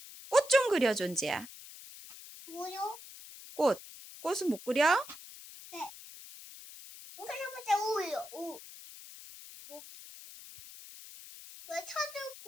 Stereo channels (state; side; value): noise; left; hiss, 16 dB below the sound